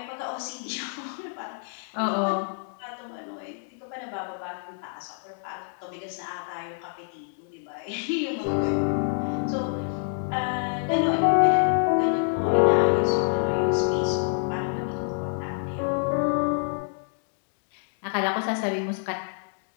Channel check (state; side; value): silent; right; 60 dB below the other